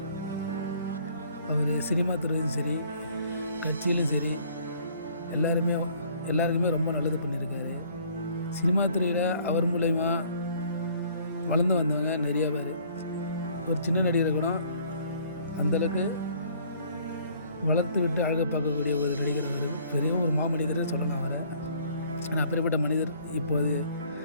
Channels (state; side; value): inverted; both; correlation -0.58